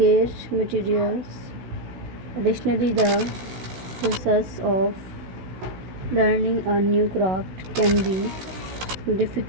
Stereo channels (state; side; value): late; left; 16 ms